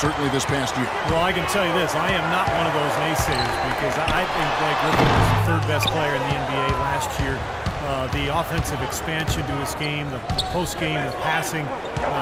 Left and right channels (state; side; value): identical; both; correlation 1.00